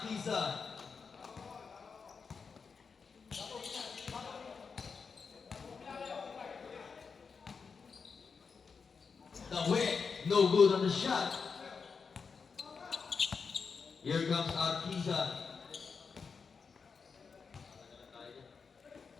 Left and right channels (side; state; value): right; quieter; 5.4 dB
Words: The whip, no good on the shot. Here comes Arquiza.